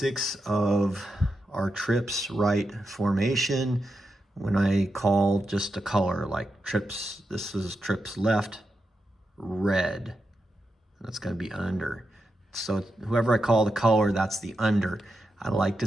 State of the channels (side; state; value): both; normal; correlation 0.87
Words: of our trips right formation. When I call just a color, like trips, this is trips left, red. That's gonna be under. So whoever I call the color, that's the under. I like to